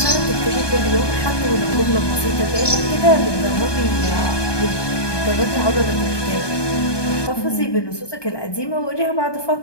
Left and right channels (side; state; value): right; late; 1.2 ms